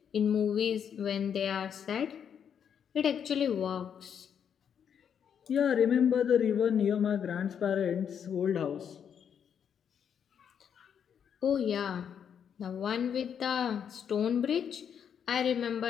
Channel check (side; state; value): right; quieter; 8.0 dB